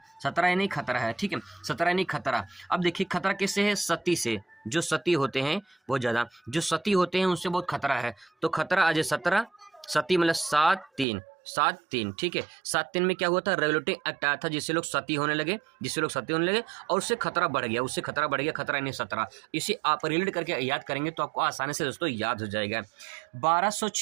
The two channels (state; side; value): drops out; left; at 11.1 s